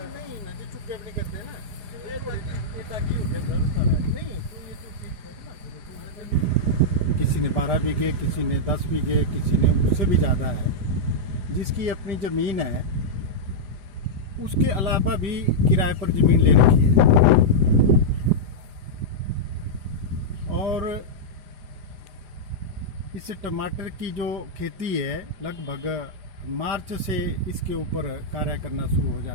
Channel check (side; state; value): left; late; 4.9 ms